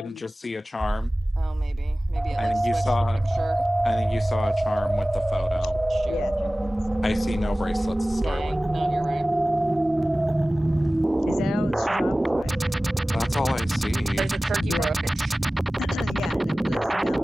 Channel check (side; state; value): both; normal; correlation 0.97